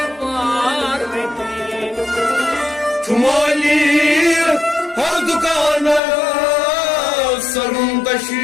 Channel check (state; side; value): drops out; right; at 6.0 s